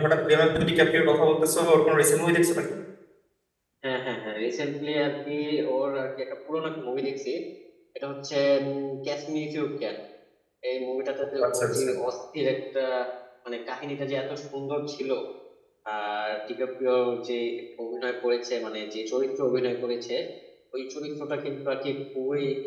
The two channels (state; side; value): identical; both; correlation 1.00